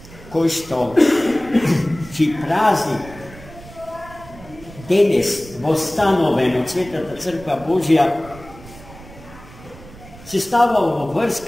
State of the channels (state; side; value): noise; right; rumble, 19 dB below the sound